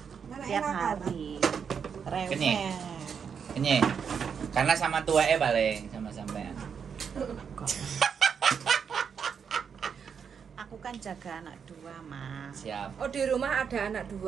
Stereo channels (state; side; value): quieter; left; 6.8 dB